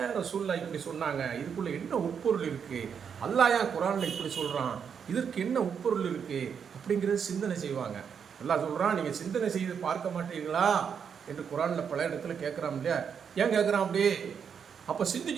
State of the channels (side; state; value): left; quieter; 7.1 dB